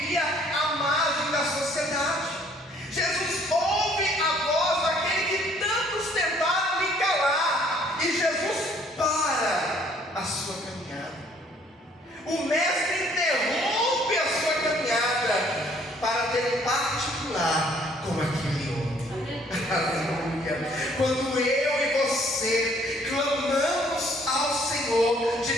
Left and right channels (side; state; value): both; normal; correlation 0.61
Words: à margem da sociedade. Jesus ouve a voz daquele que tantos tentaram lhe calar. E Jesus para a sua caminhada. O mestre interrompe a sua caminhada para ter um particular com aquele homem. Aleluia. Quando eu e você clamamos ao Senhor